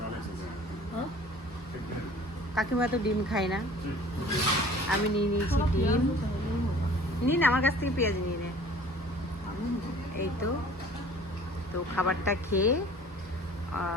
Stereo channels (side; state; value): both; normal; correlation 0.48